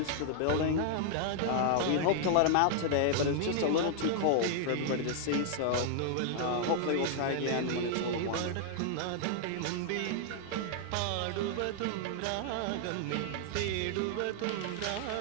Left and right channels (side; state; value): both; different; correlation -0.01